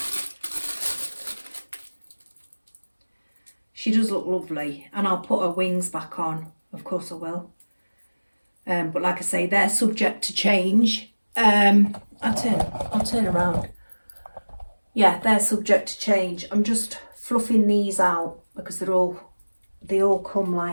She does look lovely, and I'll put her wings back on, of course I will. But like I say, they're subject to change. I'll turn around. Yeah, they're subject to change. I'm just fluffing these out because they all come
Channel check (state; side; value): inverted; both; correlation -1.00